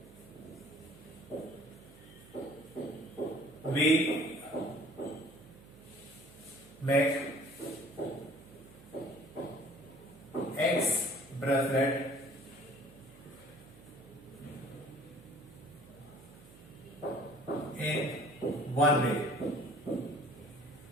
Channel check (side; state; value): right; noise; hum, 21 dB below the sound